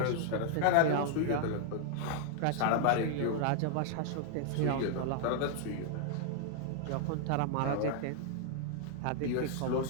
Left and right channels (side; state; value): both; different; correlation 0.00